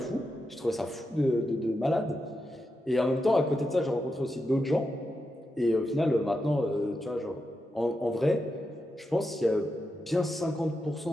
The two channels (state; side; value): normal; both; correlation 0.87